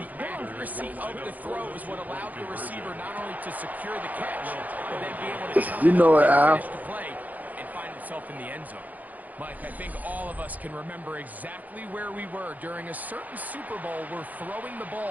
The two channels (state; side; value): late; left; 0.079 ms